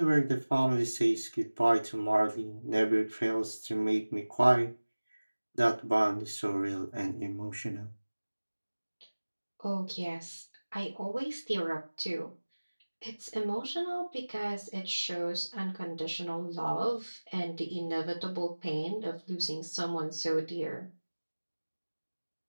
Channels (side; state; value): both; inverted; correlation -1.00